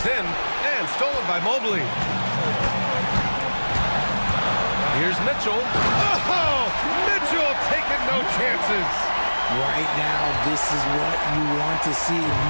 in and stolen by Mobley. Here's Mitchell. Oh, Mitchell taking no chances. Right now, this is what you want to see.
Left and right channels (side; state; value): both; inverted; correlation -1.00